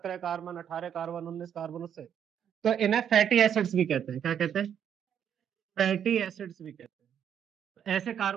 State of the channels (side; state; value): left; quieter; 8.8 dB